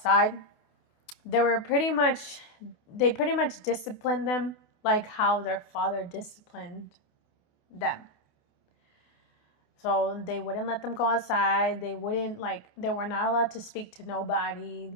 They pretty much disciplined them like how their father disciplined them. So they wouldn't let them go outside. They were not allowed to speak to nobody.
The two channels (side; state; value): right; late; 28 ms